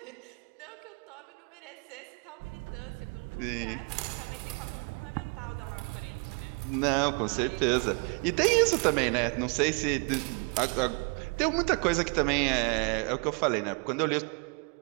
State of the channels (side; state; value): left; quieter; 33.0 dB